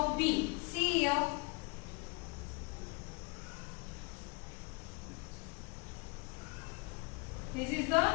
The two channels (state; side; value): quieter; right; 30.1 dB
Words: B. See here. This is the